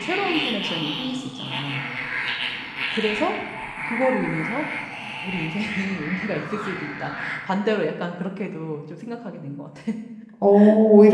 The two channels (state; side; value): identical; both; correlation 1.00